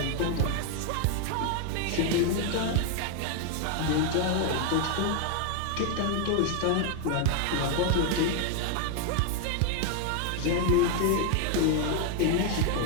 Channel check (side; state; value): both; different; correlation 0.00